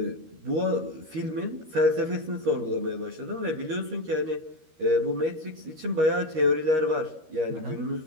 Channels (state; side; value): late; left; 13 ms